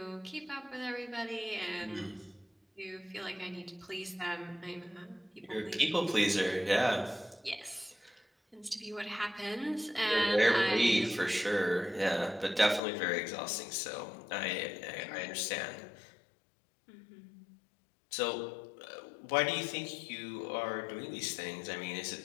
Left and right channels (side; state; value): right; drops out; at 12.8 s